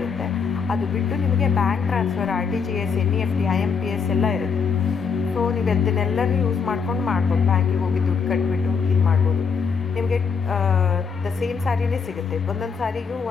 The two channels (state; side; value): quieter; right; 5.8 dB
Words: ಅದು ಬಿಟ್ಟು ನಿಮಗೆ bank transfer, RTGS, NEFT, IMPS ಎಲ್ಲ ಇರುತ್ತೆ. ಸೊ ನೀವು ಅದನ್ನೆಲ್ಲನೂ ಯೂಸ್ ಮಾಡ್ಕೊಂಡು ಮಾಡ್ಬೋದು. ಬ್ಯಾಂಕಿಗೆ ಹೋಗಿ ದುಡ್ಡು ಕಟ್ಬಿಟ್ಟು ಇದು ಮಾಡ್ಬೋದು. ನಿಮಗೆ ದ ಸೇಮ್ ಸ್ಯಾರಿನೇ ಸಿಗುತ್ತೆ. ಒಂದೊಂದು ಸಾರಿಗೂ